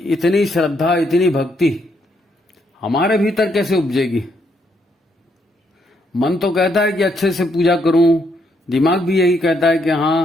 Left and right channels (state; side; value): normal; both; correlation 0.74